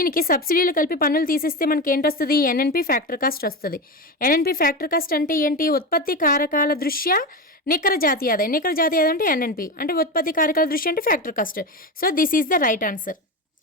సబ్సిడీలు కలిపి పన్నులు తీసేస్తే మనకి ఏంటి వస్తుంది? ఎన్ఎన్పి ఫ్యాక్టర్ కాస్ట్ వస్తుంది. ఎన్ఎన్పి ఫ్యాక్టర్ కాస్ట్ అంటే ఏంటి? ఉత్పత్తి కారకాల దృష్ట్యా నికర జాతీయ ఆదాయం అంటే ఎన్ఎన్పి, అంటే ఉత్పత్తి కారకాల దృష్ట్యా అంటే factor cost. So this is the right answer.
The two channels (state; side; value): normal; both; correlation 0.20